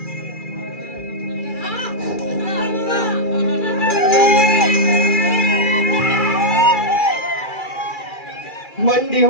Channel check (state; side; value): late; right; 2.4 ms